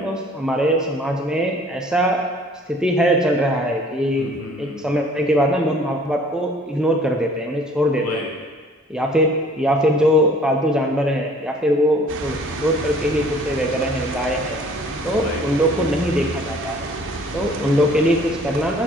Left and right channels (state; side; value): normal; both; correlation 0.54